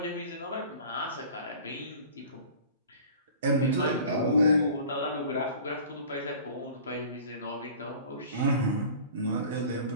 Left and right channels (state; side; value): inverted; both; correlation -0.43